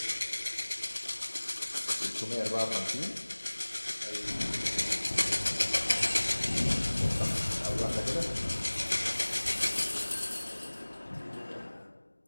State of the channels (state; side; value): inverted; both; correlation -1.00